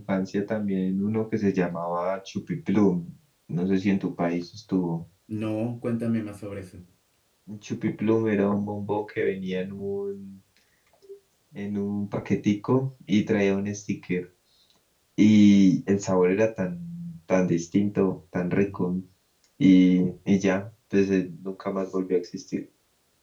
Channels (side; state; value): both; identical; correlation 1.00